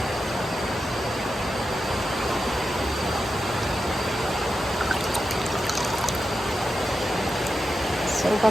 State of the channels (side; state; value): both; normal; correlation 0.89